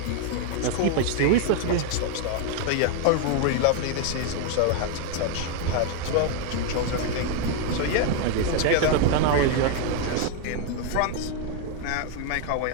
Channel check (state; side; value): different; both; correlation 0.01